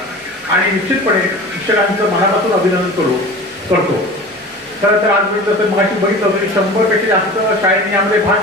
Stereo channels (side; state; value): both; normal; correlation 0.37